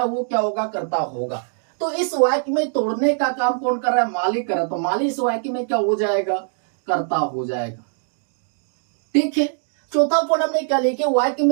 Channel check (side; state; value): left; silent; 64 dB below the other